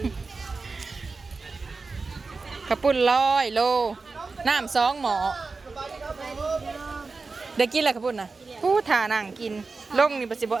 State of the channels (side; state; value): left; quieter; 4.1 dB